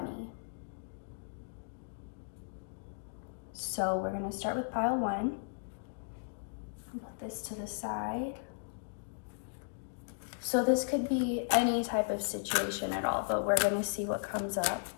So we're gonna start with pile 1. Put this to the side. So this could be any type of situation at all, but we're gonna see what comes up.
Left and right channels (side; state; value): right; silent; digital silence